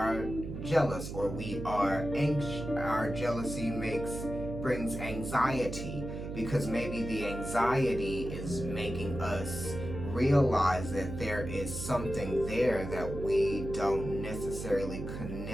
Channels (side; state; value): right; noise; hum, 7 dB below the sound